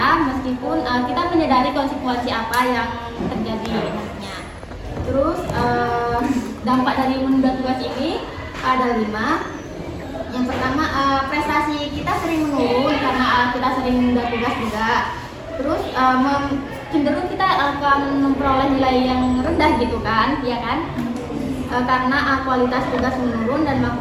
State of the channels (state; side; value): identical; both; correlation 1.00